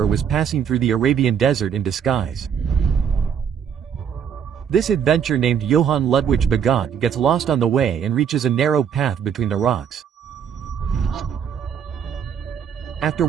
was passing through the Arabian desert in disguise. This adventurer named Johann Ludwig Bagot gets lost on the way and reaches a narrow path between the rocks. After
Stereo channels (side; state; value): left; quieter; 7.8 dB